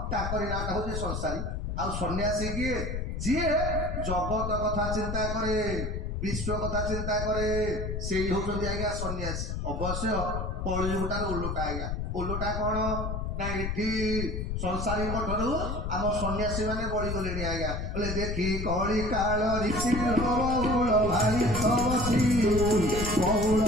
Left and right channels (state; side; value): noise; left; rumble, 3 dB below the sound